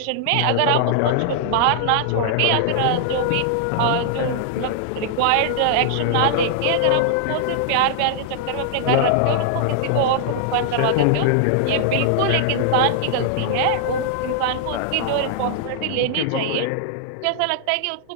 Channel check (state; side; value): different; both; correlation -0.01